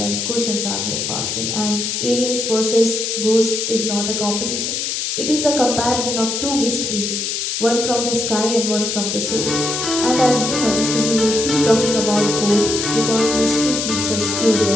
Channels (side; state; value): left; noise; hiss, 2 dB below the sound